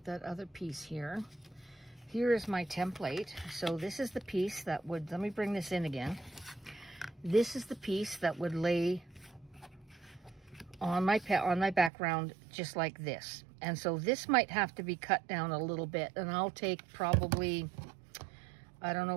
that other piece here. Here is my template. So this is the piece that would, let me bring this in again. This is the piece that would lay on my background just like this. And so this might have to be cut down a little bit, and I'll take probably, I don't know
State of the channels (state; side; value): drops out; left; at 11.9 s